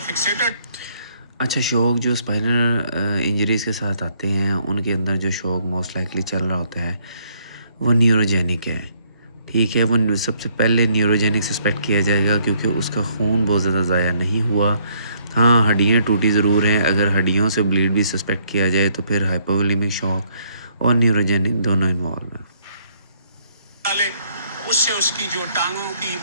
فکسیٹڈ. اچھا، شوق جو اسپائنل انجریز کے ساتھ آتے ہیں ان کے اندر جو شوق موسٹ لائکلی چل رہا ہوتا ہے وہ نیوروجینک ہے. ٹھیک ہے, وہ سب سے پہلے نیوروجینک سسپیکٹ کیا جائے گا کیونکہ اس کا خون بہت زیادہ ضائع نہیں ہوا. ہاں, ہڈیاں ٹوٹی ضرور ہیں. اگر ہڈیوں سے بلیڈ بھی سسپیکٹ کیا جائے تو پھر ہائپوولیمک شوق اور نیوروجینک دونوں انوالو ہیں. اس سے اس کی جو ٹانگوں کی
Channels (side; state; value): both; inverted; correlation -0.68